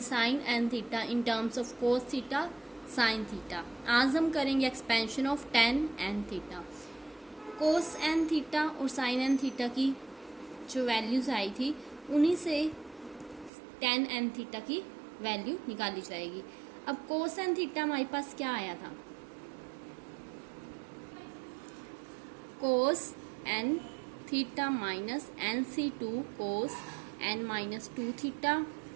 sine n theta in terms of cos theta sine theta. आज हम करेंगे expansion of tan n theta. Cos n theta और sine n theta की जो values आई थी उन्हीं से टेन एंड थीटा की वैल्यू निकाली जाएगी। अब कोस एंड थीटा हमारे पास क्या आया था, cos n theta minus NC2 cos n minus 2 theta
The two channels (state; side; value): drops out; left; at 13.5 s